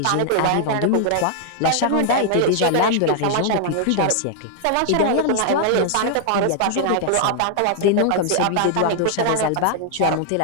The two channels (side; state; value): both; different; correlation -0.01